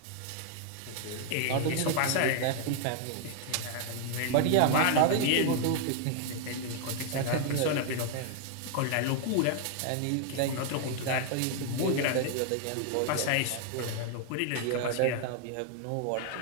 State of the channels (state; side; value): different; both; correlation 0.00